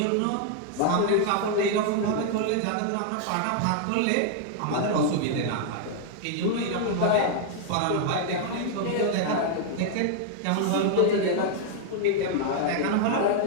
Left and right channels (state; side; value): different; both; correlation 0.00